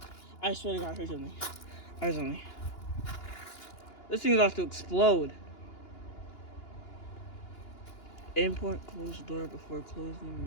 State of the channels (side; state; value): right; late; 2.9 ms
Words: I swear to God, I heard something. This thing's about to explode. Import, close door before closing